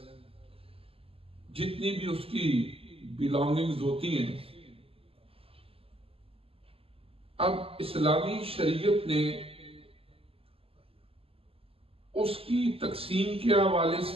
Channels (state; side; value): late; left; 0.28 ms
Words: جتنی بھی اس کی بلانگنگز ہوتی ہیں، اب اسلامی شریعت نے اس کی تقسیم کے حوالے